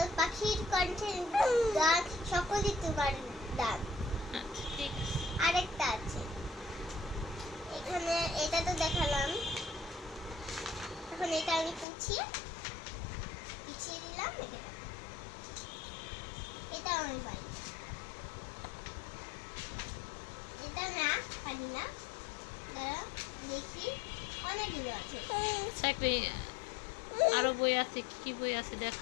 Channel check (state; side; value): drops out; right; at 11.9 s